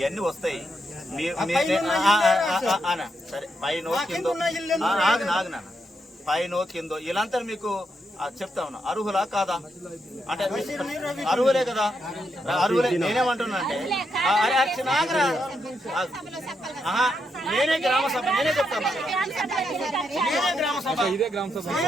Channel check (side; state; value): both; normal; correlation 0.81